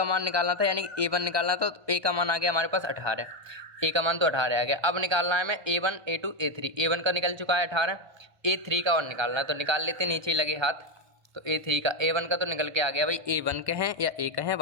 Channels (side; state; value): left; late; 1.5 ms